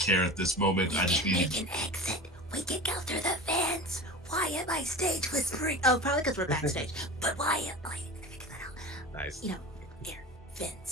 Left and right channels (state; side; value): normal; both; correlation 0.33